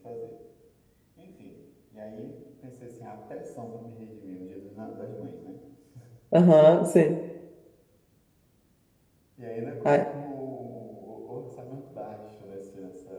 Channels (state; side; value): identical; both; correlation 1.00